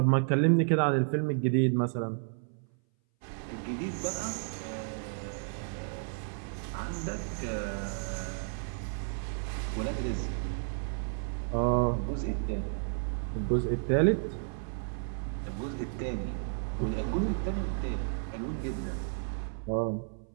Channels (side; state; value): left; silent; 56 dB below the other